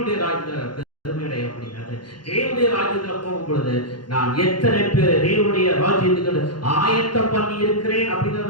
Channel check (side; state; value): right; late; 0.71 ms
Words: ராஜ்யத்துல பெருமை அடைய முடியாது. தேவனுடைய ராஜ்யத்துல போகும் பொழுது நான் எத்தனை பேர் தேவனுடைய ராஜ்யத்துக்கு ஆயத்தம் பண்ணி இருக்கிறேன்